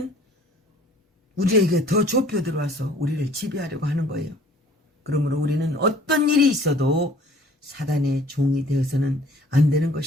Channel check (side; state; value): both; normal; correlation 0.53